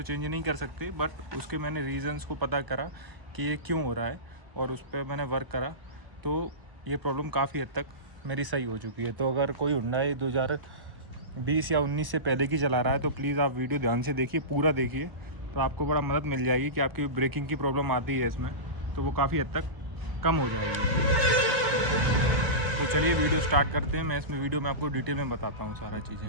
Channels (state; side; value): late; left; 1.0 ms